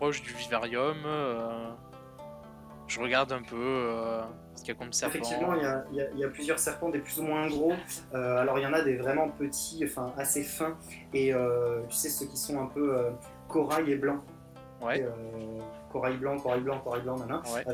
du vivarium. Je regarde un peu ce qu'il y a comme serpent. Effectivement, il y a plusieurs serpents, des plus ou moins gros. Alors, il y en a des vraiment petits, enfin assez fins. Et tu sais, ceux qui sont un peu corail et blanc. Ouais. Corail blanc, nanana, ouais.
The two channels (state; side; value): identical; both; correlation 1.00